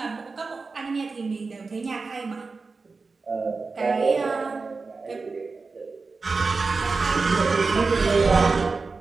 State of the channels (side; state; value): left; quieter; 4.2 dB